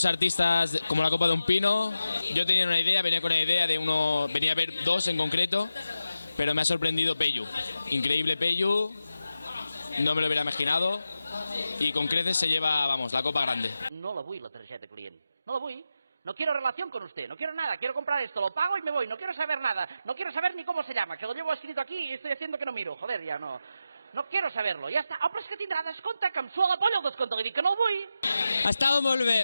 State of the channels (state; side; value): inverted; both; correlation -0.91